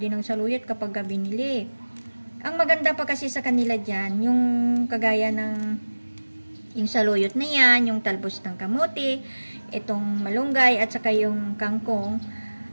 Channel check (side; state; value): both; inverted; correlation -1.00